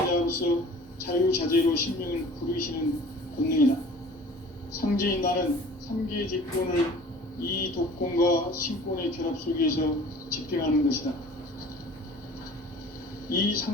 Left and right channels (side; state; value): both; normal; correlation 0.45